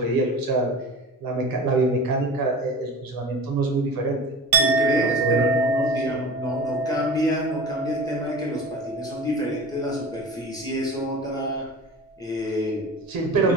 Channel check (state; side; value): normal; both; correlation 0.35